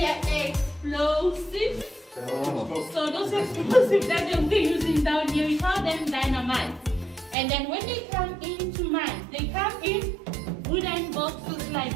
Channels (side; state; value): left; drops out; at 7.4 s